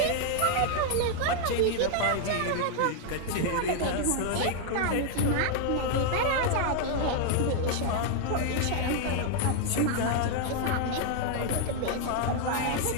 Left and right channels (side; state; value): both; different; correlation 0.00